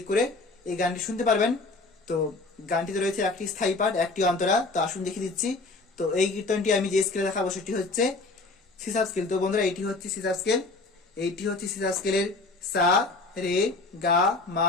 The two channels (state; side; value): quieter; right; 3.4 dB